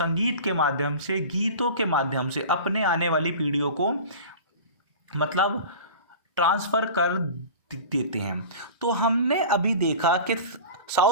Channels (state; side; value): inverted; both; correlation -0.36